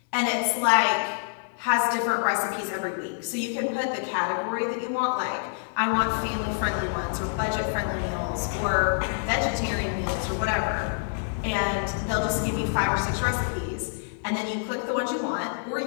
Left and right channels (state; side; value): silent; right; digital silence